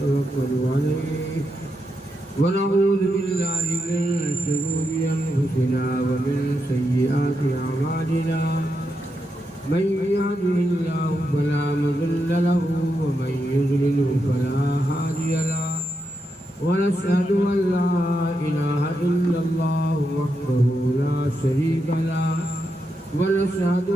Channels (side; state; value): both; normal; correlation 0.84